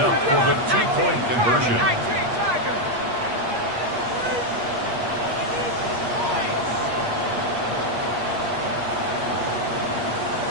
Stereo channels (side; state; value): left; late; 8.4 ms